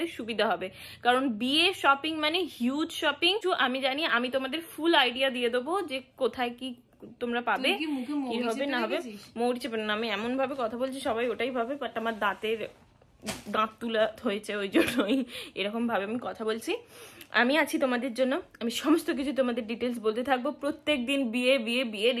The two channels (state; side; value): identical; both; correlation 1.00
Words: সুবিধা হবে, কারণ বিয়ে শপিং মানে হিউজ শপিং। আমি জানি, আমি তোমাদের ফুল আইডিয়া দিয়ে দেবো যে কোথায় কি তোমরা পাবে, কি হবে না হবে। মৌরি চেপে না, আমি এমন ভাবে কথা বলছি সবাই ওটাই ভাবে, বাট আমার দাঁত তুলা হয়েছে ওই জন্যই এরকম ভাবে আমি কথা বলছি। আমি আছি তোমাদের জন্য, আমি সমস্ত কিছু তোমাদের ডিটেলস বলতে থাকবো। প্রত্যেক দিন বিয়ে